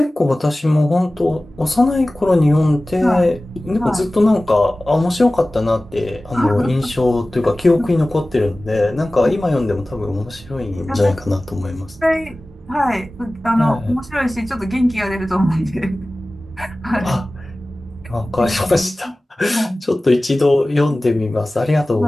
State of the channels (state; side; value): normal; both; correlation 0.97